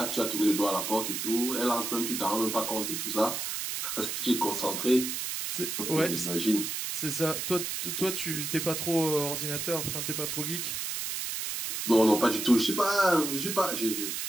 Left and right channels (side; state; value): right; noise; hiss, 3 dB below the sound